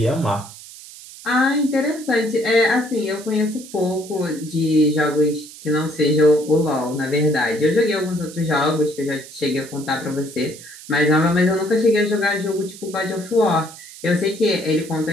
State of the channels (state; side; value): noise; right; hiss, 17 dB below the sound